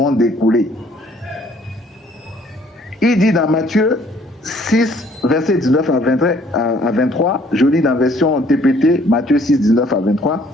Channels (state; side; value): normal; both; correlation 0.61